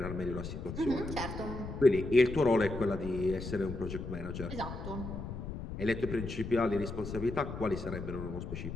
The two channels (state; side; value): noise; left; rumble, 7 dB below the sound